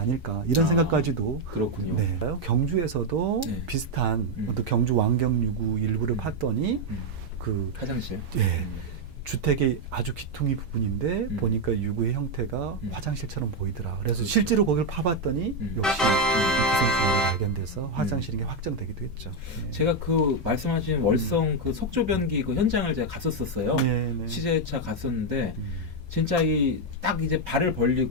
이런 생각까지도 그렇군요. 네. 경주에서도 비슷한 어떤 경주 왕경 유구 일부를 팠더니 그 화장실. 예. 주택의 아주 기퉁이 부분인데 보니까 유구의 형태가 화장실처럼 보이더라. 그래서 실제로 거기를 파봤더니 역시 기생충이 발견돼서 화장실인 게 확정되기도 했죠. 네. 제가 그 말씀하신 월성 그 석조변기 그 현장을 제가 갔었어요. 네, 네. 취재차 갔었는데 진짜 딱 이제 발을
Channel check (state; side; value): normal; both; correlation 0.03